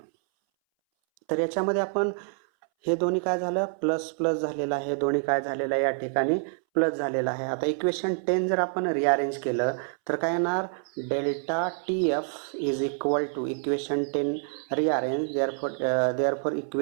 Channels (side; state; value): left; silent; 60 dB below the other